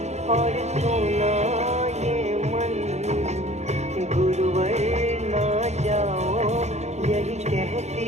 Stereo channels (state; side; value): late; left; 0.32 ms